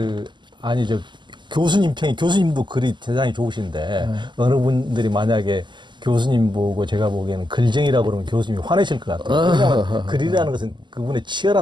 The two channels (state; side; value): late; left; 0.22 ms